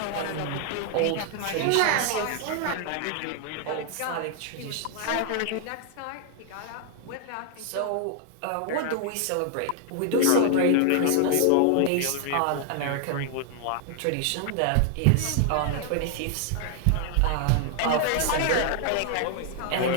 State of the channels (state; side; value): different; both; correlation 0.00